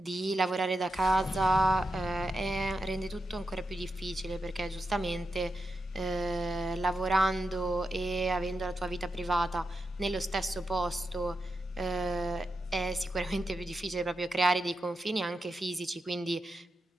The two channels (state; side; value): normal; both; correlation 0.87